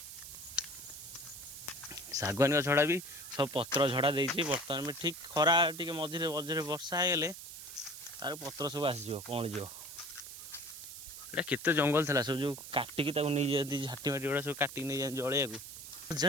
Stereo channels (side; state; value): right; noise; hiss, 12 dB below the sound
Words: सागवानी गछड़ा भी सब पत्र झड़ा देती बर्तमान में ठीक खरा टी मझे मझे वर्षा होगले तार पत्र सब आसीज कौन जो ये केते जंगल था सब जो काटिकी नहीं जाती झाटी माटी गुड़ा सब काटिक नहीं जाती जलिया